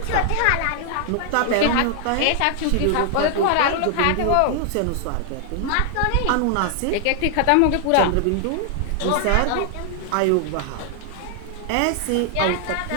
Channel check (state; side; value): different; both; correlation 0.00